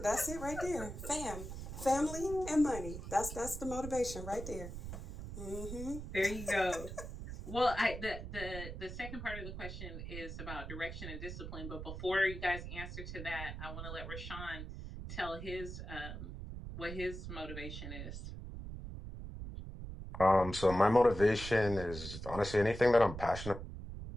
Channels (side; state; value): right; noise; rumble, 8 dB below the sound